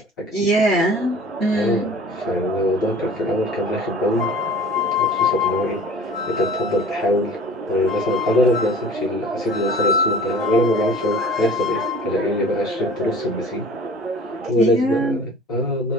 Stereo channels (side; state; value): both; normal; correlation 0.45